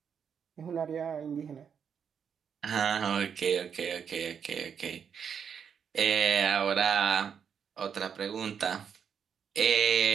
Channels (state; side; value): quieter; left; 7.3 dB